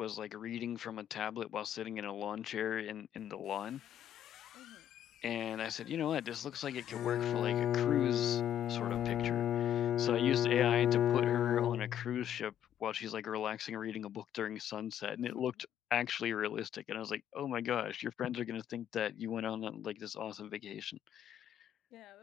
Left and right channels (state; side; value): quieter; right; 10.5 dB